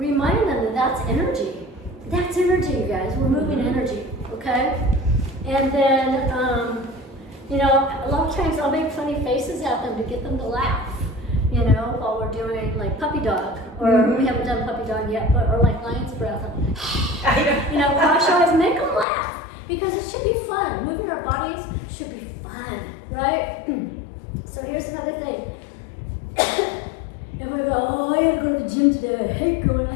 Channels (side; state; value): right; drops out; at 19.1 s